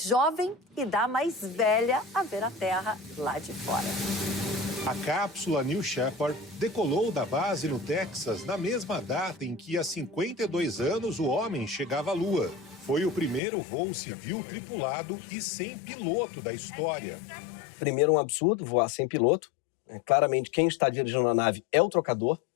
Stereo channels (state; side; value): drops out; right; at 13.4 s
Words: jovem e da mais velha a ver a Terra lá de fora. A cápsula New Shepard decolou da base no Texas na mesma data em que, há 52 anos, o homem chegava à Lua. Foi o primeiro voo civil tripulado e sem piloto da história. Primeiro, um absurdo, voar sem piloto. Claramente, quem está dirigindo a nave é o trocador.